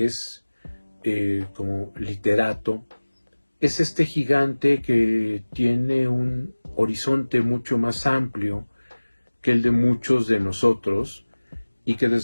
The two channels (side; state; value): both; inverted; correlation -1.00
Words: es, como literato, es este gigante que tiene un horizonte mucho más amplio que el de muchos de nosotros, y que